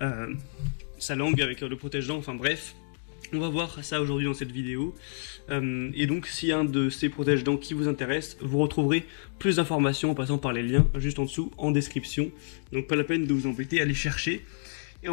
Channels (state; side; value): silent; right; digital silence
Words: sa langue avec le protège-dents, enfin bref. On va voir ça aujourd'hui dans cette vidéo. Et donc, s'il y a un de ces protège-dents qui vous intéresse, vous retrouverez plus d'informations en passant par les liens juste en dessous en description. Donc, pas la peine de vous embêter à les chercher. Et